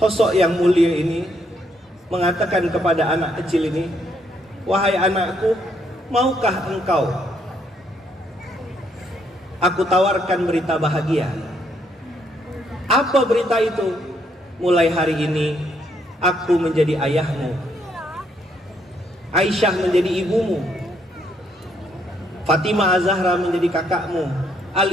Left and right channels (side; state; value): both; normal; correlation 0.72